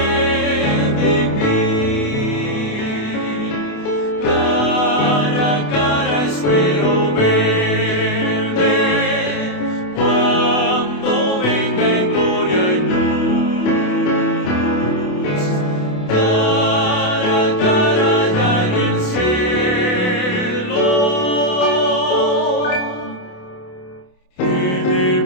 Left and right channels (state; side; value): late; right; 28 ms